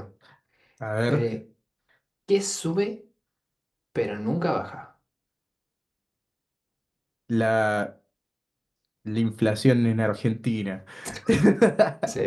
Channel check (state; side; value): identical; both; correlation 1.00